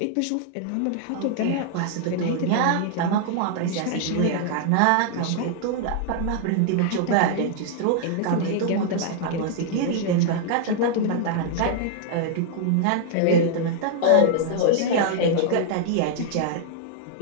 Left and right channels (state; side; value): different; both; correlation -0.01